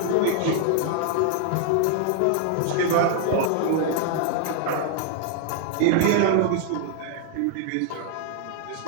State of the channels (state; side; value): different; both; correlation 0.00